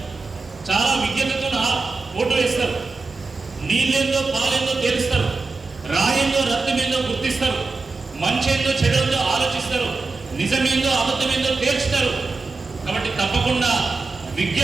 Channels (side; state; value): left; quieter; 3.9 dB